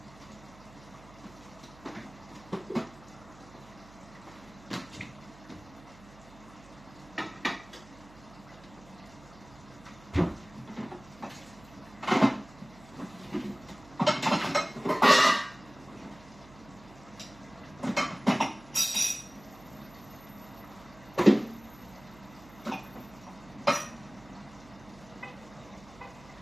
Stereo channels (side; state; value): right; noise; hum, 21 dB below the sound